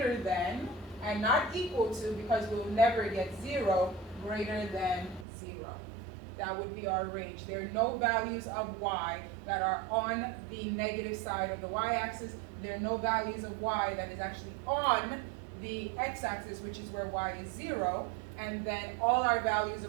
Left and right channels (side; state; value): left; drops out; at 5.2 s